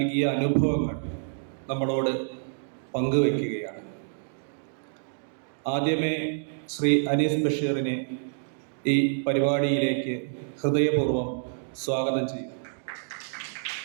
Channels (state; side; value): silent; left; digital silence